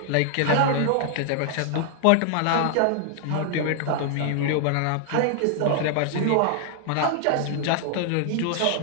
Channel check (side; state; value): both; different; correlation 0.00